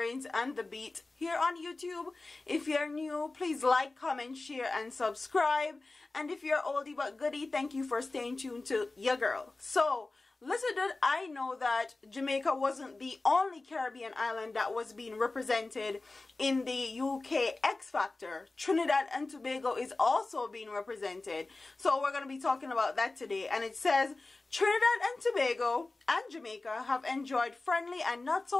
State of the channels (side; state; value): right; quieter; 3.3 dB